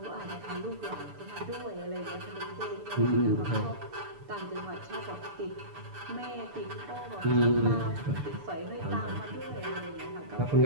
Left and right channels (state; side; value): late; left; 6.9 ms